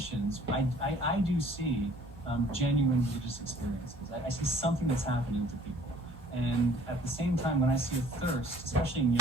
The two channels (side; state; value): both; normal; correlation 0.54